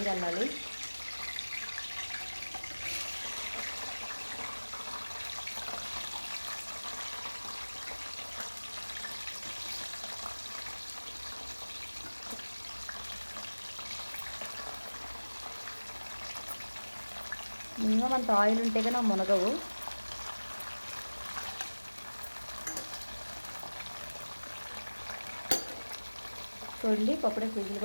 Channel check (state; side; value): inverted; both; correlation -1.00